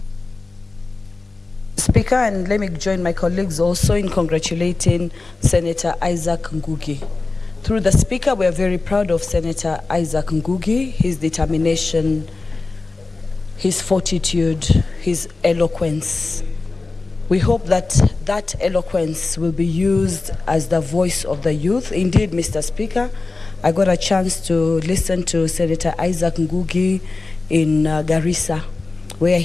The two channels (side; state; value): right; quieter; 3.6 dB